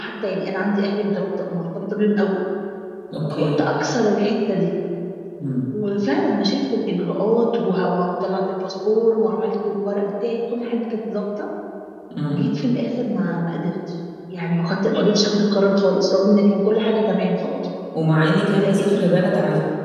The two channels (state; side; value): identical; both; correlation 1.00